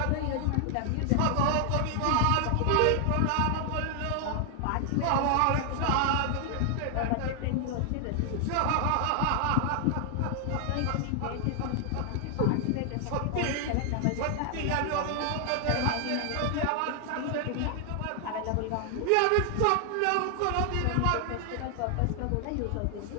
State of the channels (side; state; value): both; different; correlation 0.00